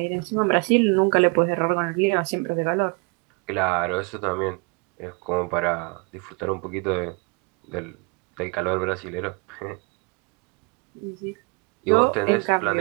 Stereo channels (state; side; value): quieter; left; 31.8 dB